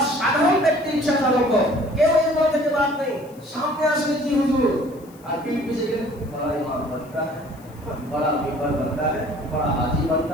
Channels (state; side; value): noise; left; hiss, 27 dB below the sound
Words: সাধারণ ব্যক্তি, রিকশা চালক হোক, কেউ এর থেকে বাদ নেই। সামনে আসলে কি হুজুর, আর पीठ पीछे गए बड़ा इमाम बनता है, बड़ा मेंबर बनता है, बड़ा हाजी